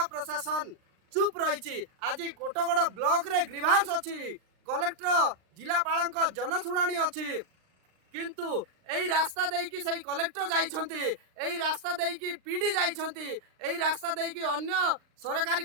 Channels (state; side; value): late; left; 39 ms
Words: प्रशासन चुप रही आज कोटगड़ ब्लॉक रे ग्रीभांस अच्छी कलेक्टर जिलापाल जनशुणाणी अच्छी किंतु यही रास्ता देकी सही कलेक्टर जाइछंती यही रास्ता देकी पीडी जाइछंती यही रास्ता देकी अन्य सरकारी